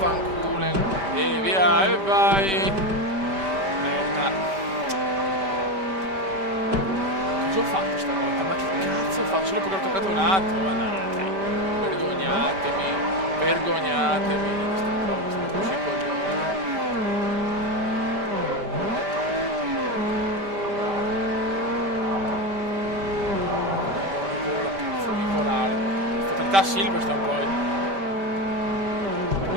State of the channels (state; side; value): late; left; 5.1 ms